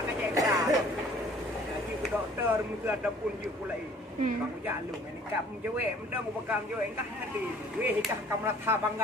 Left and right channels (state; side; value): normal; both; correlation 0.53